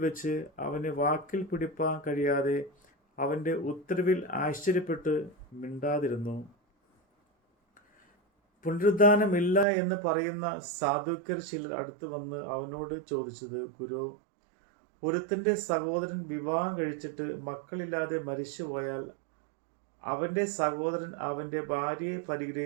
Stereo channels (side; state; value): left; drops out; at 9.7 s